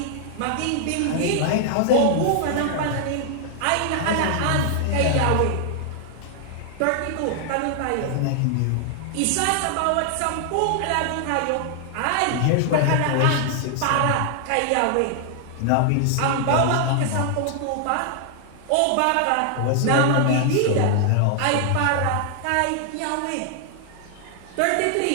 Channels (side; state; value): both; different; correlation 0.00